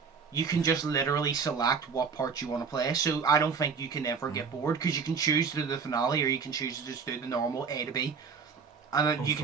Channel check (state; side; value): quieter; left; 5.7 dB